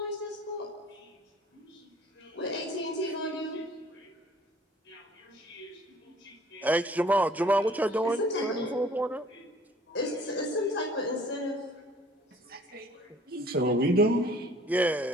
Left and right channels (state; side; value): normal; both; correlation 0.54